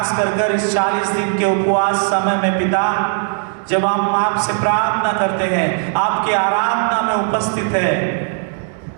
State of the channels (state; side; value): silent; left; 58 dB below the other